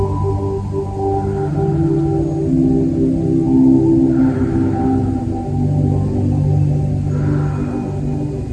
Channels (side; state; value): both; identical; correlation 1.00